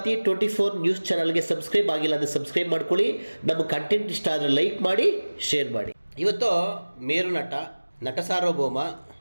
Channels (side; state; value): both; inverted; correlation -1.00